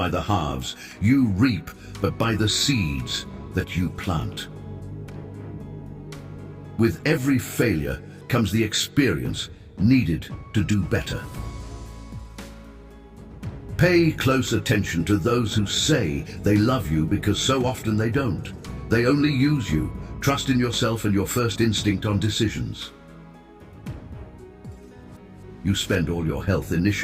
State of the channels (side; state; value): both; identical; correlation 1.00